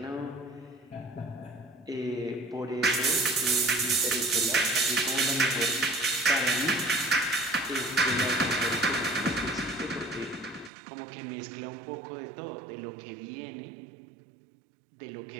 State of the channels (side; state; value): left; drops out; at 10.7 s